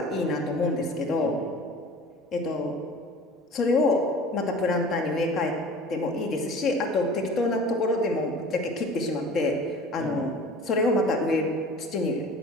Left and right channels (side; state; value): both; normal; correlation 0.42